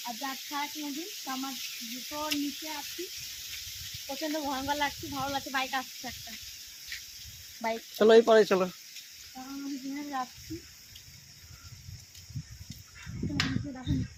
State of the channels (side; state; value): both; identical; correlation 1.00